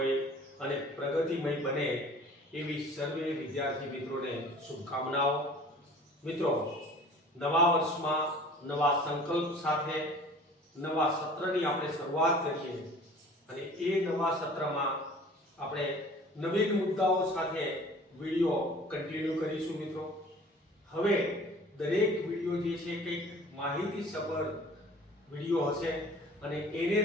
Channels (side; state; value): both; normal; correlation 0.47